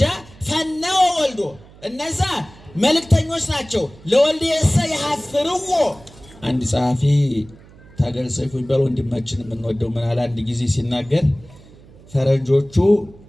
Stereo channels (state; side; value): noise; right; hum, 23 dB below the sound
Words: ፈነወ ወልዶ እነዛ መልእክተኞች ናቸው። ለወልድ የሰ ይሐፍርዎ አንድ ጸሐፊ ታገል ሰይፉ ይባል ወንድማችን የምንወደው ምን አለ አንድ ጊዜ ሲናገር ፈረንጆቹ